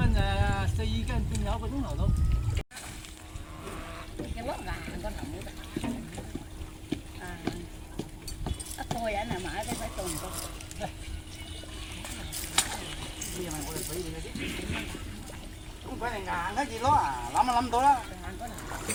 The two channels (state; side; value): identical; both; correlation 1.00